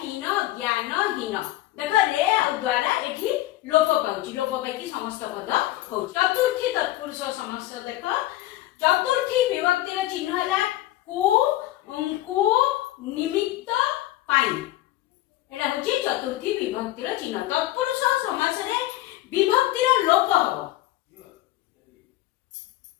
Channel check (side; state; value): right; quieter; 16.0 dB